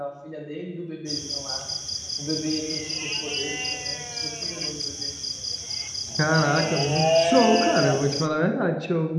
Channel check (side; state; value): both; identical; correlation 1.00